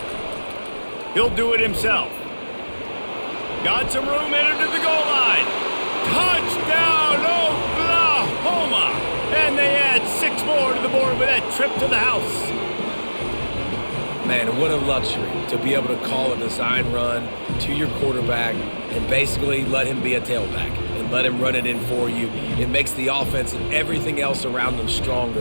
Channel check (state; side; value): inverted; both; correlation -1.00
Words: He'll do it himself. Got some room, headed to the goal line. Touchdown, Oklahoma! And they add 6 more to the board with that trip to the house. Man, what a luxury to be able to call a design run to your quarterback and basically let him be a tailback and let him run it in for you. It makes the offense and everything else around them